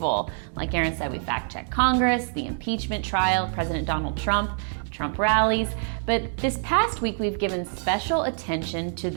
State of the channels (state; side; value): silent; left; digital silence